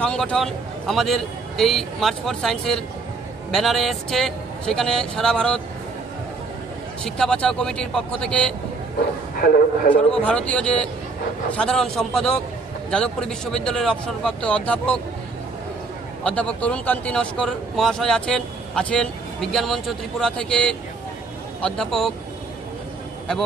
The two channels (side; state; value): left; quieter; 4.0 dB